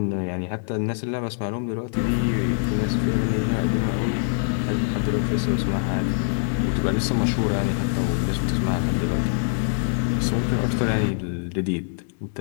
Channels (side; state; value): right; silent; digital silence